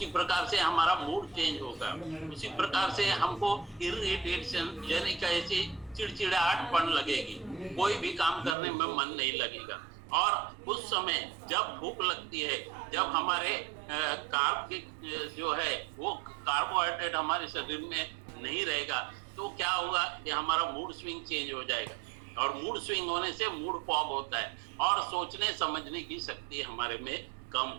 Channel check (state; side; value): drops out; left; at 8.6 s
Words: प्रकार से हमारा मूड चेंज होगा, उसी प्रकार से हमको इरिटेशन यानी कैसे चिड़चिड़ाहटपन लगेगी, कोई भी काम करने में मन नहीं लगेगा। और उस समय जब भूख लगती है, जब हमारे कार्ब जो है वो कार्बोहाइड्रेट हमारे शरीर में नहीं रहेगा, तो क्या होगा कि हमारा मूड स्विंग चेंज हो जाएगा, और मूड स्विंग होने से मूड फॉग होता है, और सोचने समझने की शक्ति हमारे में कम